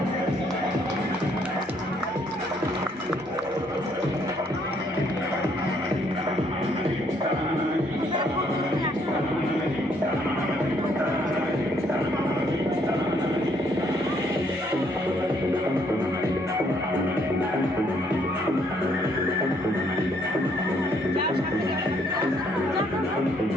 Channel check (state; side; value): normal; both; correlation 0.68